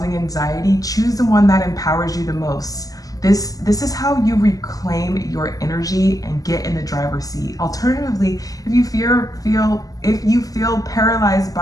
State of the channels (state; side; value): late; right; 0.17 ms